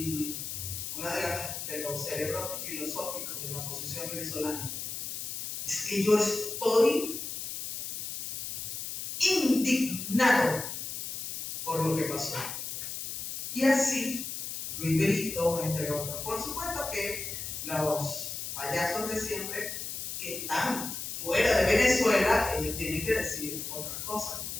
uno de los cerebros filosóficos de la oposición venezolana. Es que yo estoy indignado por lo que pasó. Y así, Luis Brito, entre otros. Por supuesto que los payasos de siempre que están fuera de Venezuela, ellos tienen que decir otras cosas,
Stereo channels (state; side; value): noise; left; hiss, 6 dB below the sound